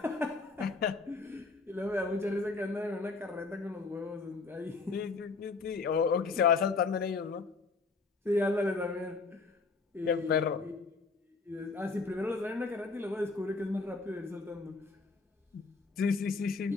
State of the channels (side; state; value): right; quieter; 4.3 dB